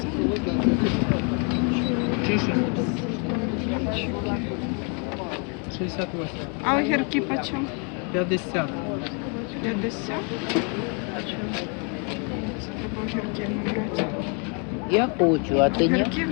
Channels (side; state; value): right; quieter; 35.8 dB